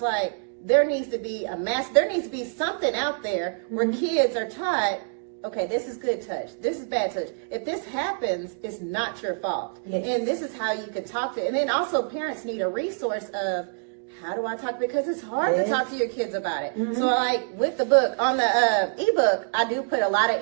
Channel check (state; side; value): silent; left; digital silence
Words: like, there needs to be there needs to be something out there where kids are taught, okay, this is good touch, this is bad touch. If this happens, it's not your fault. And this is how you can talk to, and then also parents need a resource of, how do I talk? Because it's hard to talk to your kids about it. So like with the book, on the ebook, I do put a lot of